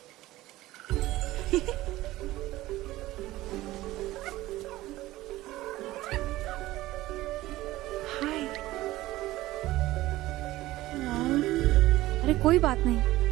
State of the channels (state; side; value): quieter; left; 17.0 dB